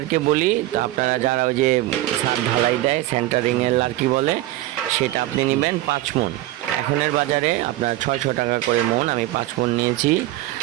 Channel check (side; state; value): left; quieter; 16.0 dB